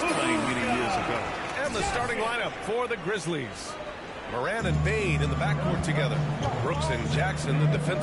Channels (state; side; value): identical; both; correlation 1.00